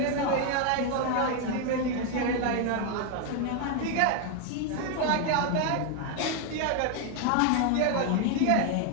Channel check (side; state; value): both; different; correlation 0.01